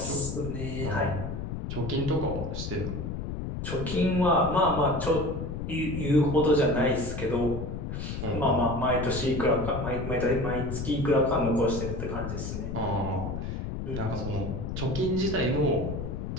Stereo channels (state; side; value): noise; left; rumble, 5 dB below the sound